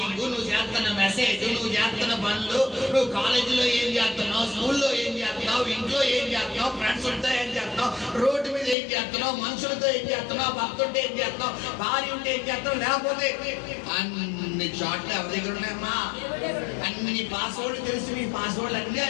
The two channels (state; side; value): drops out; right; at 8.8 s